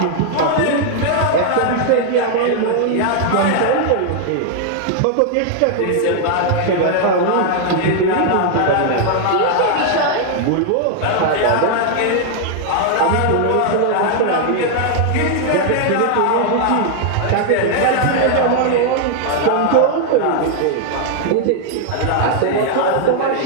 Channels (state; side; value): different; both; correlation 0.00